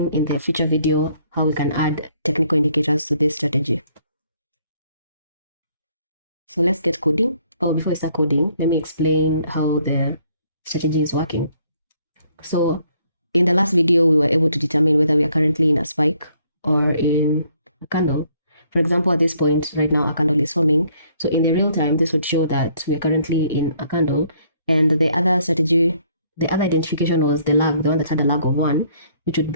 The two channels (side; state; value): both; inverted; correlation -0.66